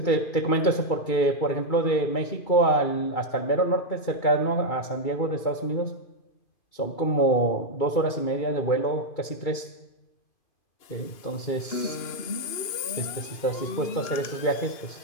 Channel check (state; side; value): late; right; 2.5 ms